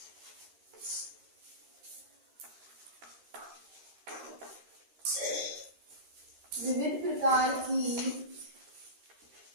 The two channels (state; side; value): late; left; 13 ms